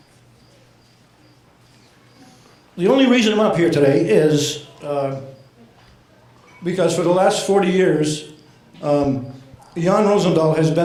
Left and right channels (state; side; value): identical; both; correlation 1.00